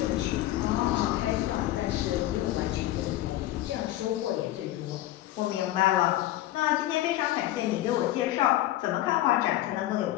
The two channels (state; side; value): quieter; right; 15.0 dB